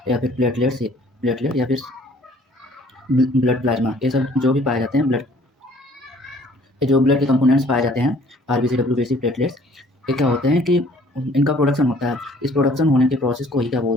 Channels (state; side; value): normal; both; correlation 0.56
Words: या फिर प्लेटलेट या फिर ब्लड प्लाज्मा, ये सब जो भी पाए जाते हैं, ये जो ब्लड के कंपोनेंट्स पाए जाते हैं, RBC, WBC, प्लेटलेट्स, ये क्या होते हैं कि इनका प्रोडक्शन होता है। इस प्रोडक्शन होने के प्रोसेस को ही क्या